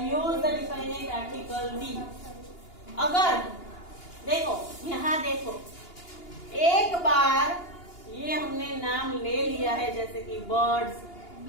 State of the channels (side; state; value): right; late; 2.8 ms